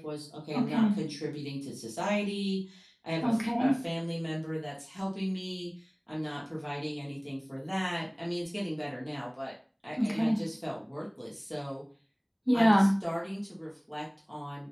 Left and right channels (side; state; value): both; identical; correlation 1.00